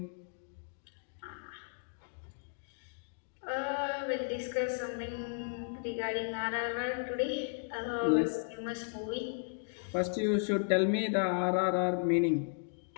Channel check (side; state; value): right; silent; digital silence